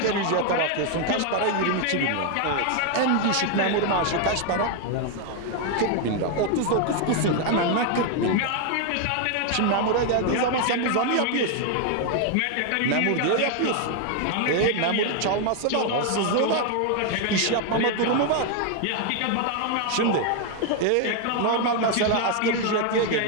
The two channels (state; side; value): different; both; correlation 0.01